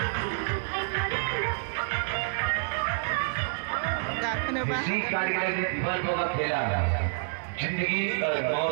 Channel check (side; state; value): left; silent; 59 dB below the other